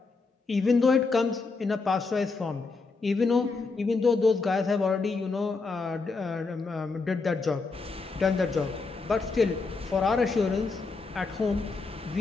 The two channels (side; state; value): right; quieter; 4.1 dB